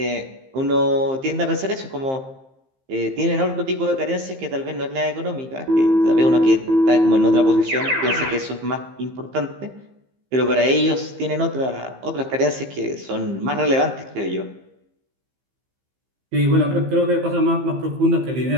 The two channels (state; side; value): late; left; 15 ms